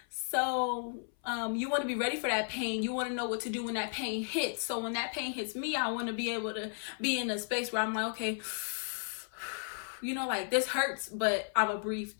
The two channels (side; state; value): right; silent; 55 dB below the other